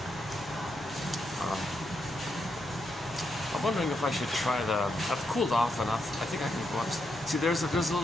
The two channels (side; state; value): right; noise; rumble, 22 dB below the sound